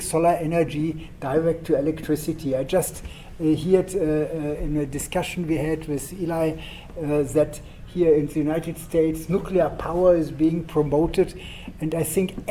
solar energy direct to electricity. I just heard in a discussion we had with Eli that here in the United States nuclear power is being promoted, and I think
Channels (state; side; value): identical; both; correlation 1.00